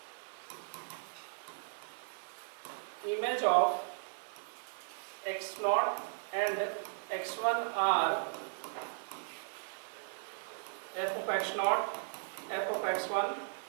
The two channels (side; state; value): left; silent; digital silence